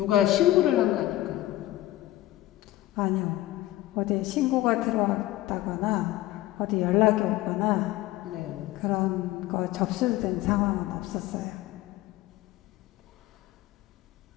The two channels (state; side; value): quieter; right; 15.8 dB